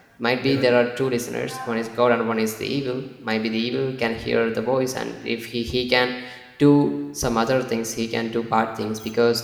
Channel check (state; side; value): identical; both; correlation 1.00